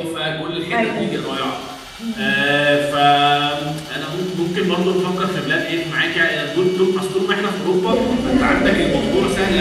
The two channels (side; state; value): both; identical; correlation 1.00